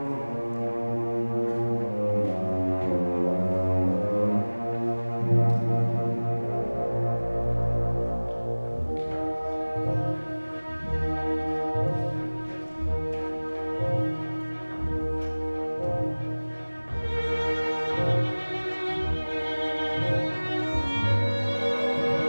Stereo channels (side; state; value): both; inverted; correlation -1.00